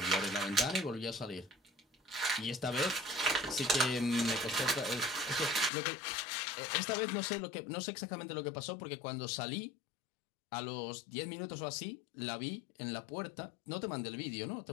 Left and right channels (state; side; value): drops out; right; at 5.7 s